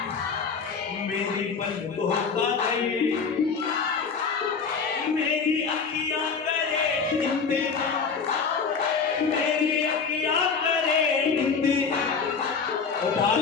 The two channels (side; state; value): right; quieter; 5.5 dB